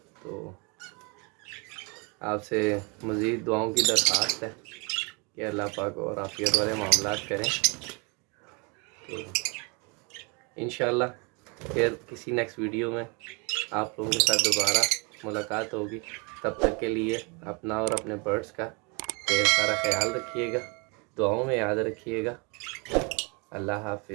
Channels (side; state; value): left; quieter; 30.5 dB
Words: तो आपसे मज़ीद दुआओं की दरख्वास्त है कि अल्लाह पाक और आफियत वाले मामलात करें। तो इंशाल्लाह फिर किसी नेक्स्ट वीडियो में आप लोगों के साथ दोबारा मुलाकात होगी। तब तक के लिए अपना और अपने बर्ड्स का ढेर सारा ख्याल रखिएगा, दुआओं में याद रखिएगा। अल्लाह